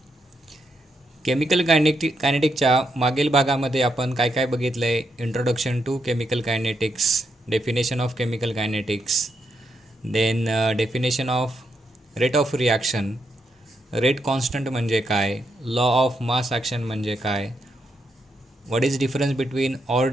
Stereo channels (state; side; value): normal; both; correlation 0.81